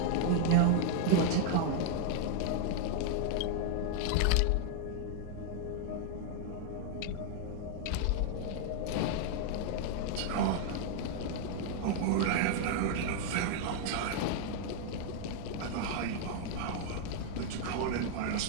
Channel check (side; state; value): both; different; correlation -0.01